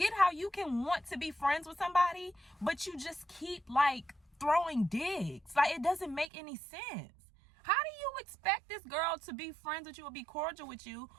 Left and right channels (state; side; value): drops out; left; at 6.3 s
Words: how you can want to be friends with somebody, but you just keep like throwing digs. Like, it doesn't make any sense. How do you expect this girl to be friends with you or be cordial with you